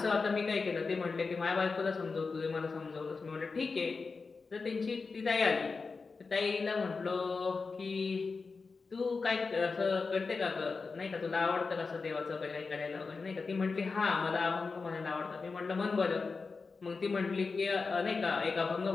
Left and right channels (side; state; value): right; quieter; 4.4 dB